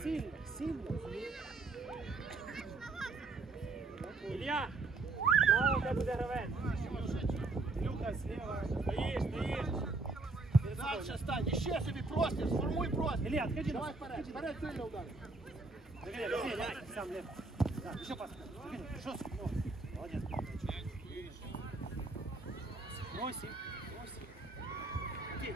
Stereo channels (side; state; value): left; quieter; 3.5 dB